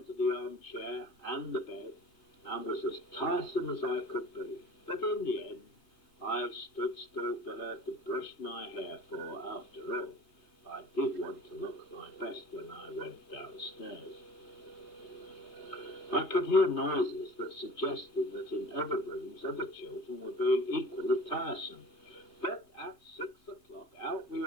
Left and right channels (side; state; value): right; late; 3.3 ms